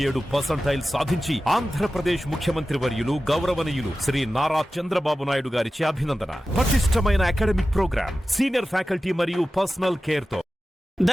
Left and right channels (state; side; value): normal; both; correlation 0.95